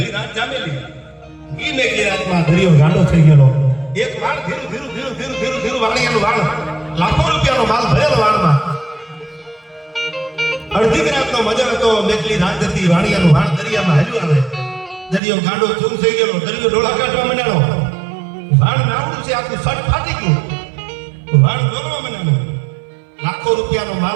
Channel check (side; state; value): left; drops out; at 15.2 s